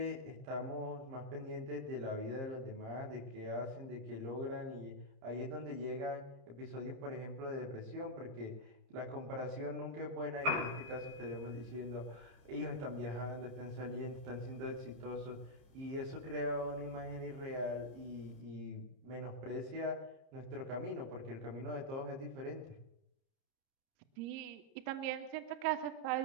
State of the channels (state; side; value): late; left; 30 ms